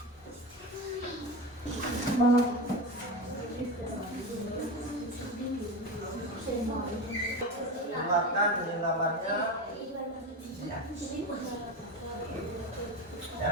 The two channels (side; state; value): both; normal; correlation 0.23